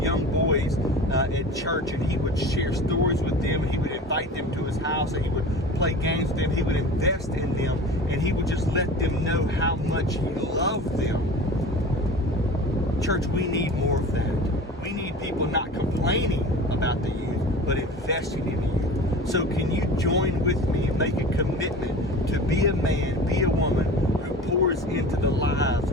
boys at church, and he would share stories with them, and he would invite them to his house, and he would play games with them. He would invest in them, and he would just let them know how much he loved them. Church, we need more of that. We need people not complaining about the youth, but investing in the youth. So can you join with me and make a commitment to be a man, be a woman who pours into the lives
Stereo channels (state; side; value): normal; both; correlation 0.36